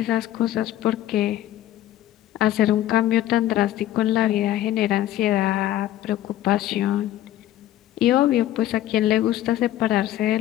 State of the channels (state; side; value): quieter; right; 13.4 dB